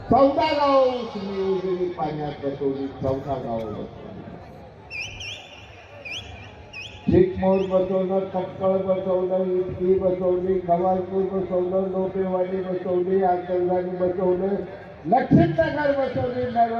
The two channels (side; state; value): both; identical; correlation 1.00